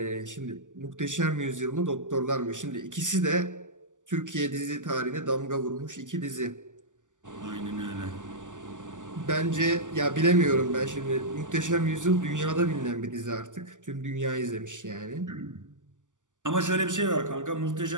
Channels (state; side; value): late; left; 0.87 ms